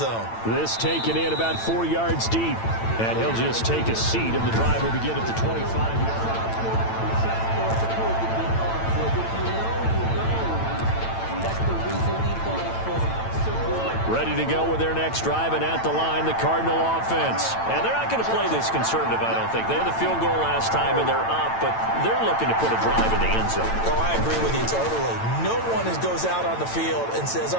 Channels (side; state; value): right; late; 8.9 ms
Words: This taken in about 4 yards deep, and he'll just take a seat, and the drive will begin at the 25. Ready to go with their next drive, and at the line, the Cardinal offense. And they're not going to play this conservative, I don't think. They had the field goal last time, and they're up, but they're looking to put a drive in the end zone. Oh, I agree with you totally. No one goes out on the field and says,